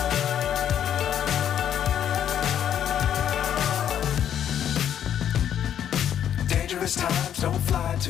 Dangerous times, don't fly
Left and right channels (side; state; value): right; quieter; 9.7 dB